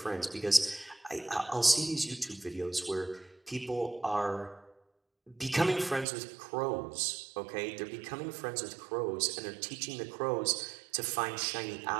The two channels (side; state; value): left; drops out; at 6.1 s